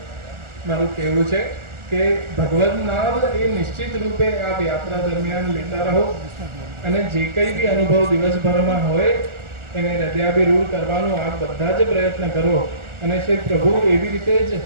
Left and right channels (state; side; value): late; left; 1.4 ms